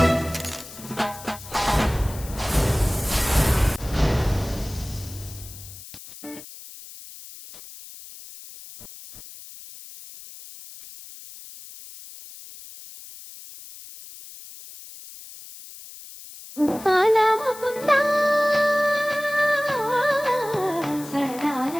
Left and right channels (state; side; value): noise; left; hiss, 16 dB below the sound